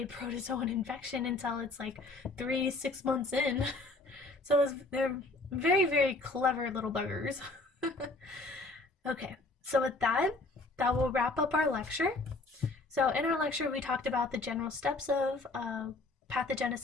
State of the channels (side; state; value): right; quieter; 3.1 dB